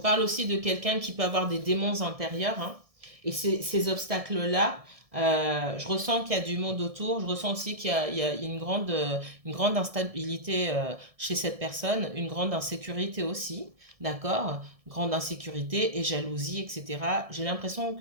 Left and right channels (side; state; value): left; late; 1.6 ms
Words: aussi de quelqu'un qui peut avoir des démons intérieurs. Hein. Et ces obstacles-là, je ressens qu'il y a du monde autour. Je ressens aussi qu'il y a une grande instabilité chez cette personne, une grande insécurité aussi. D'accord? Grande insécurité et jalousie, etc. J'ai l'impression